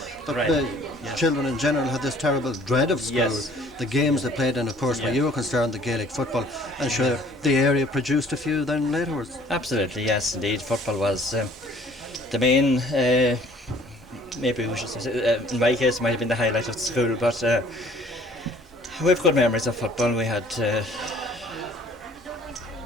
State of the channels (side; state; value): both; normal; correlation 0.55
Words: but Right. the children in general had this terrible dread of school. Yes. The games they played in, of course, where Yeah. you were concerned, the Gaelic football, and sure, the area produced a few then laterwards. Absolutely, yes, indeed. Football was the main, maybe we should say, in my case, it might have been the highlight of the school, but we have good memories of football. We had